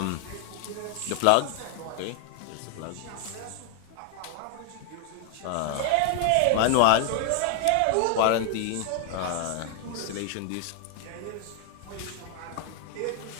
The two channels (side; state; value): both; different; correlation 0.00